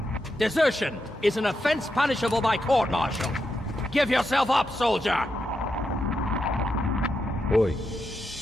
Desertion is an offense punishable by court-martial. Give yourself up, soldier! Oi.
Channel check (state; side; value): normal; both; correlation 0.85